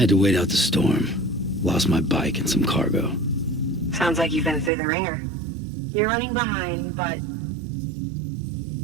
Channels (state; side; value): drops out; left; at 4.7 s